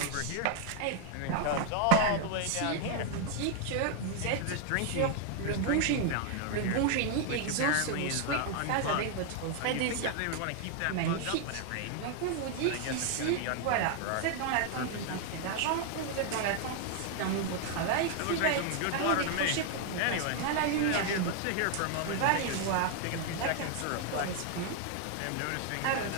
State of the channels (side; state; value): both; different; correlation 0.00